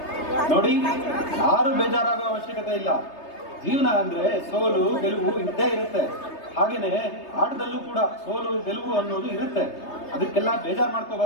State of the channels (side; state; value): right; late; 3.3 ms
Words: ನೋಡಿ, ಯಾರು ಬೇಜಾರಾಗೋ ಅವಶ್ಯಕತೆ ಇಲ್ಲ. ಜೀವನ ಅಂದ್ರೆ ಸೋಲು ಗೆಲುವು ಇದ್ದೇ ಇರುತ್ತೆ. ಹಾಗೇನೆ ಆಟದಲ್ಲೂ ಕೂಡ ಸೋಲು ಗೆಲುವು ಅನ್ನೋದು ಇರುತ್ತೆ. ಅದಕ್ಕೆಲ್ಲ ಬೇಜಾರು